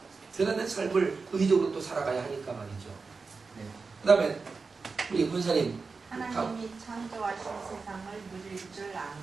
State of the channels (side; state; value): left; quieter; 4.5 dB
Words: 그런 삶을 의지적으로 또 살아가야 하니까 말이죠. 그 다음에 우리 권사님, 하나님이 창조하신 세상을 누릴 줄 아는